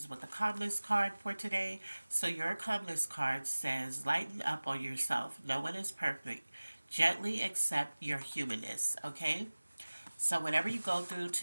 with a calmness card for today. So your calmness card says, lighten up on yourself. No one is perfect. Gently accept your humanness, okay? So whatever you go through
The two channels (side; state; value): both; inverted; correlation -1.00